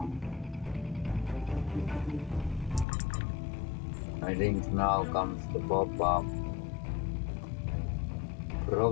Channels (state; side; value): drops out; right; at 2.9 s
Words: I think now comes the pop-up.